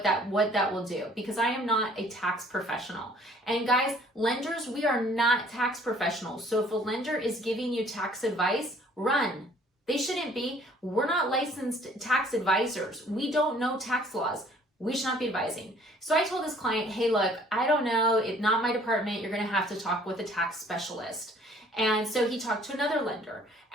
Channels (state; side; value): normal; both; correlation 0.56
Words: that will do because I am not a tax professional. And guys, lenders, we are not tax professionals. So if a lender is giving you tax advice, run. They shouldn't be. We're not licensed tax advisors. We don't know tax laws. We should not be advising. So I told this client, hey, look, I don't know. It's not my department. You're going to have to talk with a tax specialist. And so he talked to another lender.